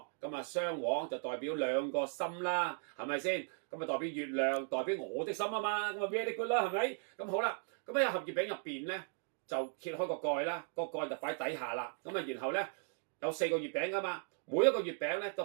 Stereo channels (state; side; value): silent; left; 53 dB below the other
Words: 咁啊雙黃就代表2個心啦，係咪先？咁啊代表月亮，代表我的心啊嘛，咁啊 very good 啦，係咪？咁好啦，咁喺一盒月餅入邊咧就揭開個蓋啦，個蓋就擺底下啦。咁啊然後咧有4個月餅噶嘛，每一個月餅咧都